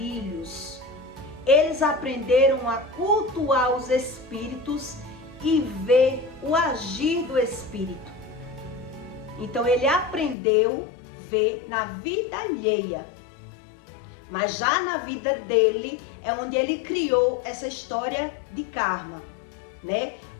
Eles aprenderam a cultuar os espíritos e ver o agir do espírito. Então ele aprendeu a ver na vida alheia. Mas já na vida dele é onde ele criou essa história de karma, né?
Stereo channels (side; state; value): right; drops out; at 10.4 s